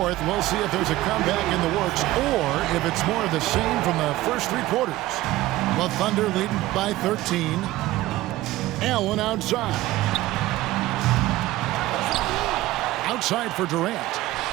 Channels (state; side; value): quieter; left; 16.9 dB